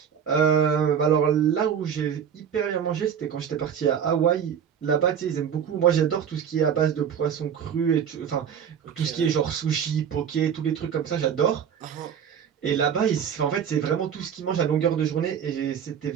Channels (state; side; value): quieter; left; 8.1 dB